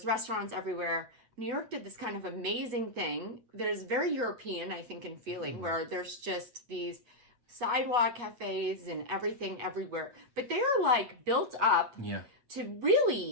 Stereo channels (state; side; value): late; left; 8.3 ms